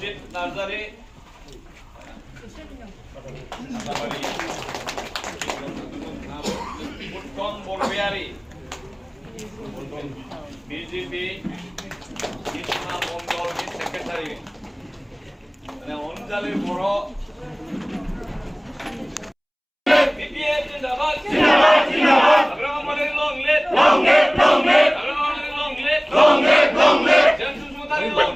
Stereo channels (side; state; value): both; identical; correlation 1.00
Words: নার্জারি উত্তম বড়বিহারী BJP Krishna Mondal secretary, মানে অঞ্জলি বড় BPF জিন্দাবাদ জিন্দাবাদ জিন্দাবাদ, আগ্রহ মানে long live long live long live, আগ্রহ মানে লং লিভ লং লিভ।